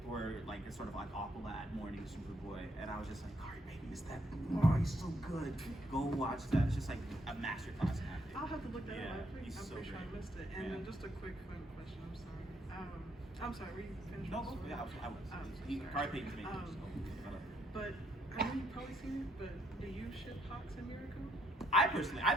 where it's sort of Aqualad mourning Superboy, and I was just like, Kari Payton, is that? Oh, he's so good. Go watch that. It's just a masterclass in acting. I'll have to look that up. I'm He's so pretty sure I great. missed it. And then just a quick fun question. I'm sorry. I'm sorry. Were you finished? No, yeah, I was. Kari Payton's amazing. But I know you've probably seen it, but do you ship Hawks and Miracle? I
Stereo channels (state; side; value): normal; both; correlation 0.72